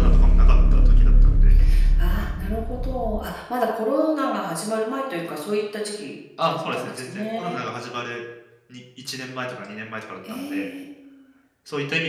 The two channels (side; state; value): both; identical; correlation 1.00